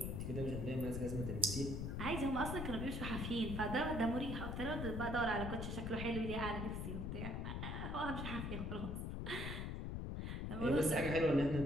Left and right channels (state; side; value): noise; left; rumble, 3 dB below the sound